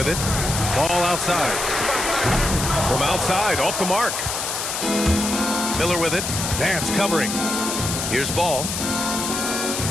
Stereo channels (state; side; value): noise; left; hiss, 3 dB below the sound